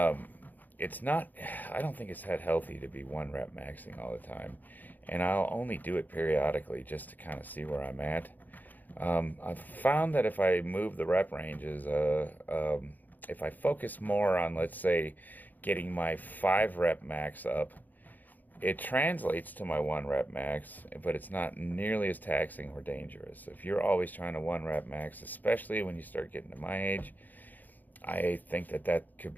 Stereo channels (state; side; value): late; right; 0.084 ms